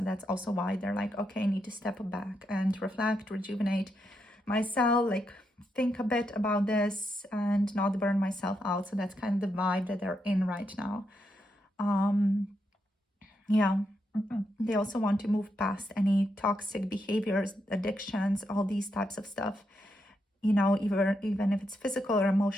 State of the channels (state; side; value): normal; both; correlation 0.82